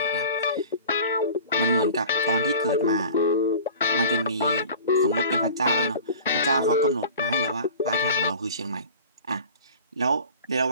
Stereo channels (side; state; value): both; inverted; correlation -0.41